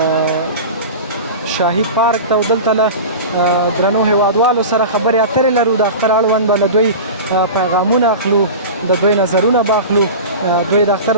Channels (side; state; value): both; inverted; correlation -0.31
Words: شاهي پارک ته او دلته له درنو هیوادوالو سره خبرې اترې لرو. د اختر اړوند به له دوی پیغامونه اخلو، د دوی نظرونه به اخلو. دوی د اختر